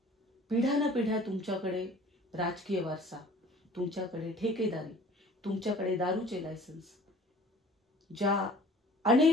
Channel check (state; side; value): normal; both; correlation 0.48